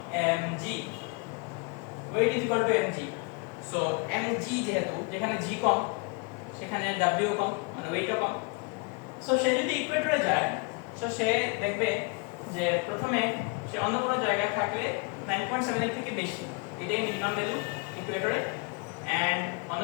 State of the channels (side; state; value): right; quieter; 31.0 dB